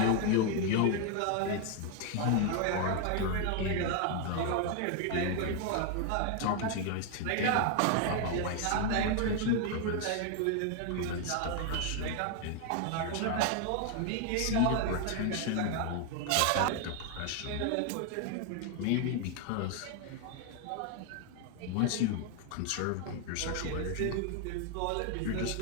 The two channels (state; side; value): different; both; correlation 0.01